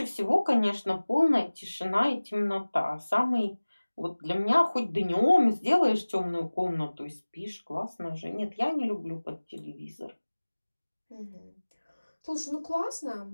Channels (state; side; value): inverted; both; correlation -1.00